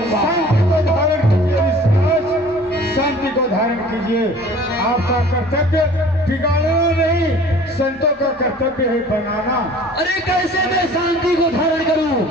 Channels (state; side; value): normal; both; correlation 0.48